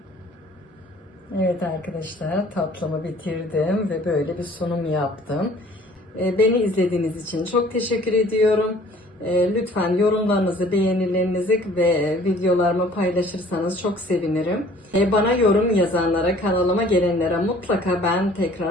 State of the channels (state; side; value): normal; both; correlation 0.53